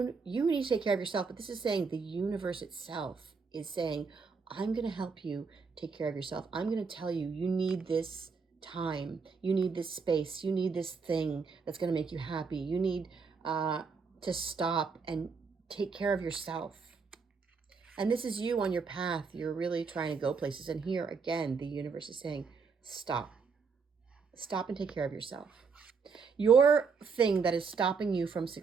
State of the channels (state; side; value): quieter; left; 5.2 dB